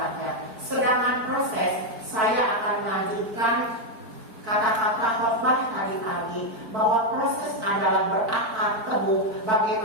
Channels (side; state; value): left; late; 4.4 ms